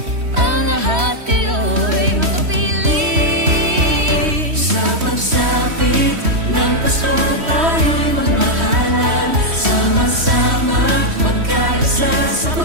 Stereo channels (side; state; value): left; late; 3.1 ms